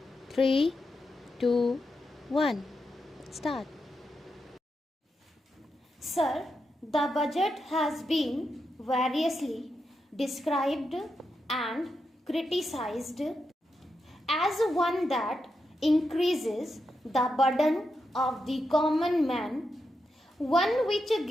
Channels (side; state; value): both; normal; correlation 0.86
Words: 3, 2, 1. Start. Sir, the budget has been variously described and criticized as one that increases the burden of the common man, one which